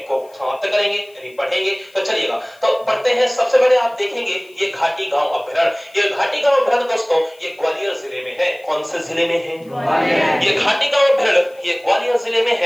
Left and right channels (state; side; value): noise; left; hiss, 30 dB below the sound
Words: को समाप्त करेंगे, यानी पढ़ेंगे। तो चलिएगा, तो पढ़ते हैं। सबसे पहले आप देखेंगे ये घाटी गांव अभ्यारण्य। ये घाटी गांव अभ्यारण्य दोस्तों ये ग्वालियर जिले में है। कौन से जिले में है? ग्वालियर। ये घाटी गांव अभ्यारण्य ये ग्वालियर जिले में